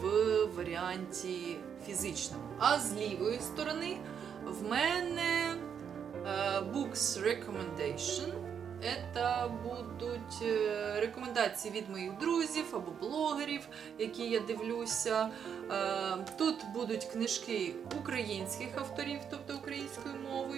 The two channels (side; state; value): left; quieter; 7.7 dB